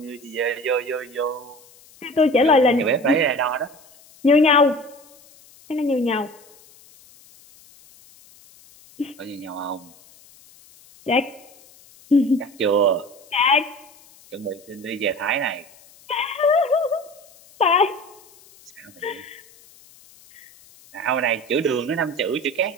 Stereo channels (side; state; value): left; noise; hiss, 26 dB below the sound